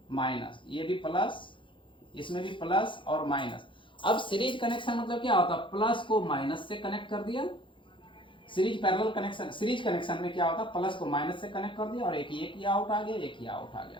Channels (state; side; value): late; right; 0.24 ms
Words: माइनस, ये भी प्लस, इसमें भी प्लस और माइनस। अब सीरीज कनेक्शन मतलब क्या होता है, प्लस को माइनस से कनेक्ट कर दिया। Series parallel connection, series connection में क्या होता है, प्लस को माइनस से कनेक्ट कर दिया और एक ये आउट आ गया, एक ये आउट आ